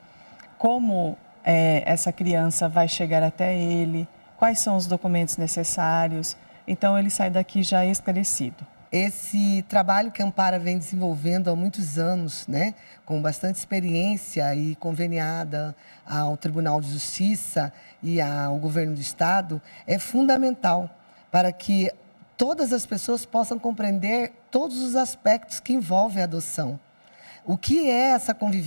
como essa criança vai chegar até ele, quais são os documentos necessários, então ele sai daqui já esclarecido. Esse trabalho que a Ampara vem desenvolvendo há muitos anos, né, com bastante experiência e conveniada ao Tribunal de Justiça e ao Governo do Estado, é fundamental para que todas as pessoas possam compreender todos os aspectos que envolvem a adoção. O que é essa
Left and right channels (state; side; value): inverted; both; correlation -1.00